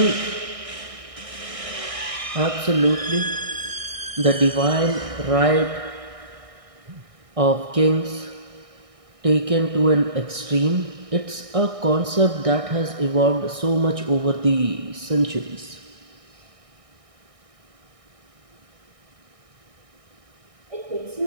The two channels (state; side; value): late; left; 1.6 ms